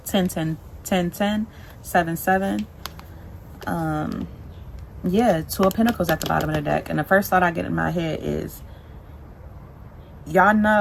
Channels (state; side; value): identical; both; correlation 1.00